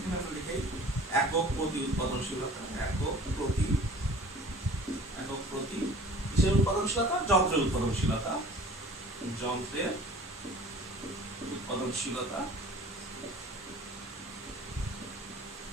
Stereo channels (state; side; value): normal; both; correlation 0.46